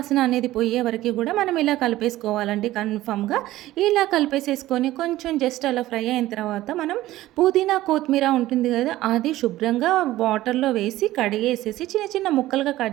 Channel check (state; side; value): quieter; left; 15.8 dB